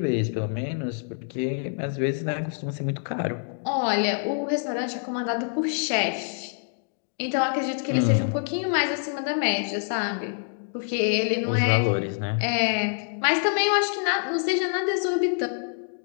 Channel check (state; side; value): silent; right; 61 dB below the other